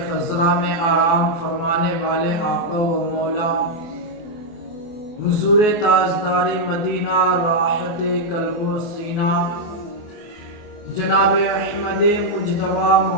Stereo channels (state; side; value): late; right; 24 ms